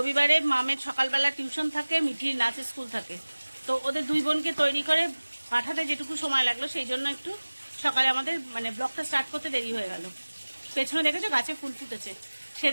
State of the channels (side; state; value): both; inverted; correlation -1.00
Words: মামের সকালবেলা টিউশন থাকে, মিঠির নাচের স্কুল থাকে, তো ওদের দুই বোনকে তৈরি করে পাঠাতে যেটুকু সময় লাগলো সেই জন্য একটু সকালে আমাদের ব্লগটা স্টার্ট করতে দেরি হয়ে গেল। পেছনে দেখেছো গাছে ফুল ফুটেছে,